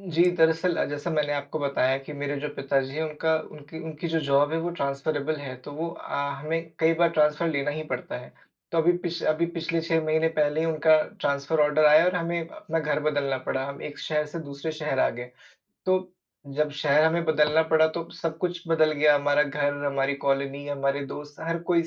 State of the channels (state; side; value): identical; both; correlation 1.00